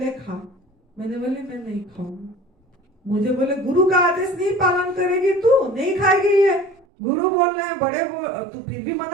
खा। मैंने बोले मैं नहीं खाऊंगी। मुझे बोले गुरु का आदेश नहीं पालन करेगी तू, नहीं खाएगी ये, गुरु बोल रहे हैं, बड़े तू फिर भी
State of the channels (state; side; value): drops out; left; at 6.9 s